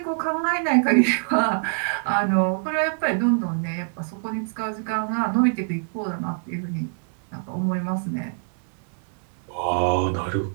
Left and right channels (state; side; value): silent; left; digital silence